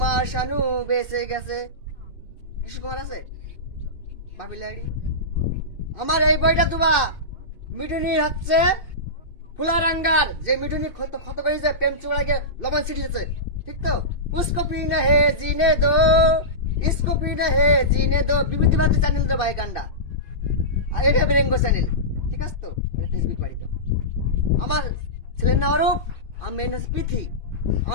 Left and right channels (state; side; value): late; right; 2.6 ms